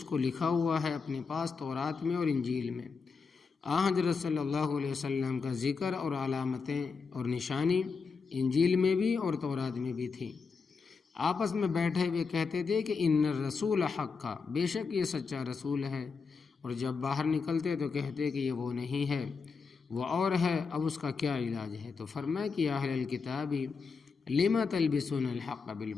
کو لکھا ہوا ہے اپنے پاس تورات میں اور انجیل میں۔ حضرت صلی اللہ علیہ وسلم کا ذکر اور علامتیں اور نشانی انجیل میں بھی اور تورات میں بھی تھی۔ آپس میں بیٹھے ہوئے کہتے تھے کہ ان الرسول حق، بے شک یہ سچا رسول ہے، اور جب باہر نکلتے تو کہتے کہ یہ وہ نہیں ہے، وہ اور ہے، اب اس کا کیا علاج ہے؟ تو فرمایا کہ اہل الکتاب لما تلبسون الحق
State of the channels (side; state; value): right; quieter; 5.0 dB